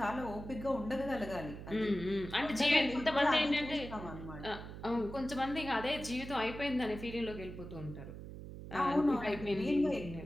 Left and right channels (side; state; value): right; noise; hum, 11 dB below the sound